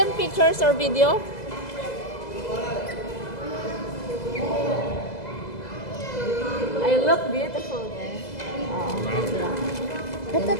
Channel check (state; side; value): late; right; 2.0 ms